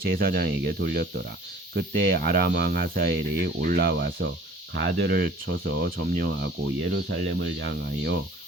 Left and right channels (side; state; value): both; normal; correlation 0.50